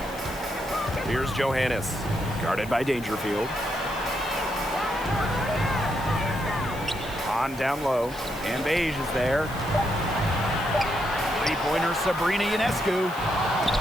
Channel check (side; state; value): left; noise; hiss, 18 dB below the sound